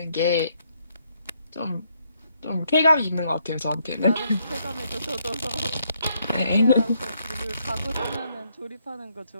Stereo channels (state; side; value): inverted; both; correlation -0.73